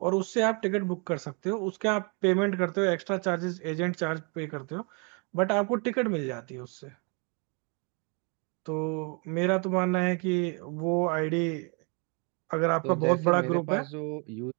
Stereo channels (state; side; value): quieter; left; 34.7 dB